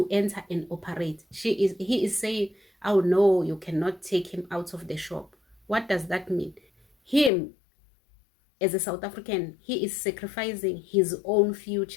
enter and operate. He is saying, oh no, you cannot take him out of the shop. What does that mean? Him, as a South African, he is sacrificing his own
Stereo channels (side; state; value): right; drops out; at 7.3 s